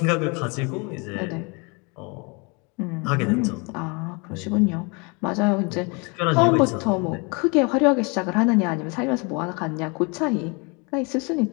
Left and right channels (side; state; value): right; quieter; 31.1 dB